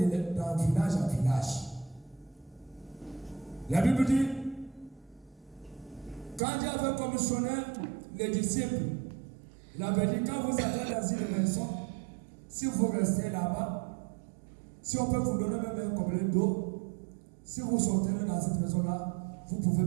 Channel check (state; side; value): drops out; left; at 6.4 s